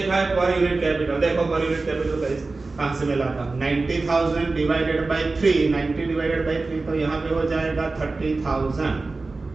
है पर यूनिट कैपिटल। देखो पर यूनिट कैपिटल कहाँ से मिला था, 90,000 डिवाइडेड बाय 3, 90 डिवाइडेड बाय 3, तो यहाँ पे हो जाएगा 30,000,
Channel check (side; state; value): left; quieter; 3.6 dB